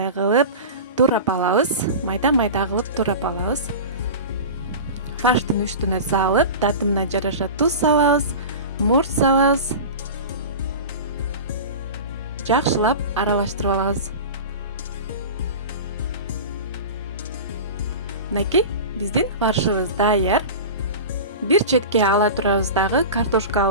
кылып турап алабыз. Майда-майда кылып турап алабыз. Фарштын үстүнө салып, татымына жараша туз салабыз, мурч салабыз. Жакшылап аралаштырып алабыз. Мынакей, биздин фаршыбыз даяр. Бир четке ала турабыз дагы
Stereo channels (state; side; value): inverted; both; correlation -0.30